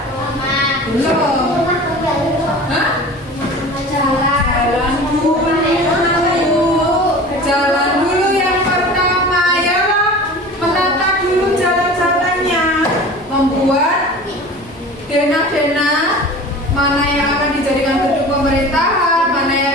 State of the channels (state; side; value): normal; both; correlation 0.38